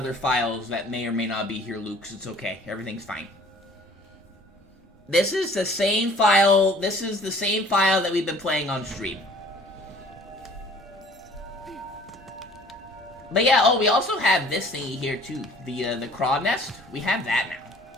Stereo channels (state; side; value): normal; both; correlation 0.52